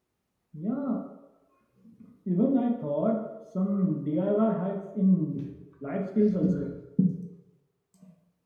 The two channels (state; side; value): identical; both; correlation 1.00